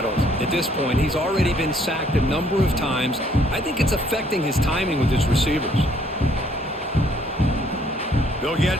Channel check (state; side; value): normal; both; correlation 0.64